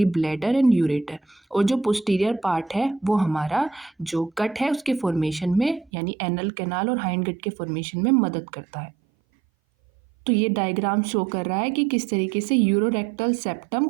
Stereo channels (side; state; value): left; drops out; at 5.9 s